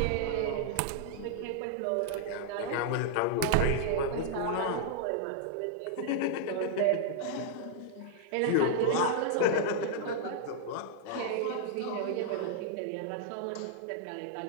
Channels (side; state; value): both; different; correlation -0.01